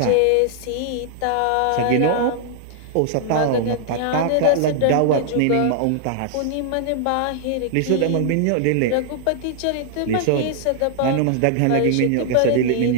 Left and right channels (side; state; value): both; different; correlation -0.01